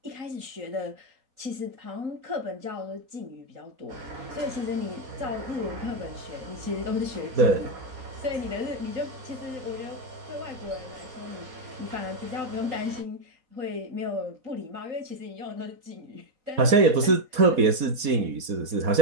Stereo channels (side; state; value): left; late; 4.2 ms